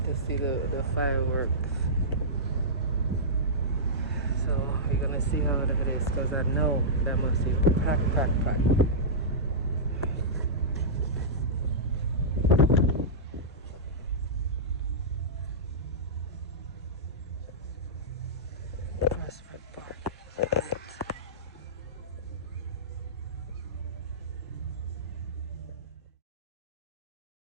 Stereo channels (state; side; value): normal; both; correlation -0.16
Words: see the fireworks. So we're gonna see how that is, because I know that must be packed. Prospect Park.